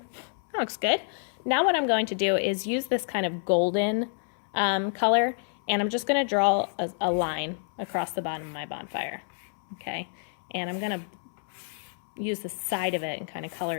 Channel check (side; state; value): right; silent; 59 dB below the other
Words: looks good. Now what I'm going to do is use this kind of golden color, and I'm just going to draw a line across the bottom of my bonfire. Okay, and I'm going to use the side of it and kind of color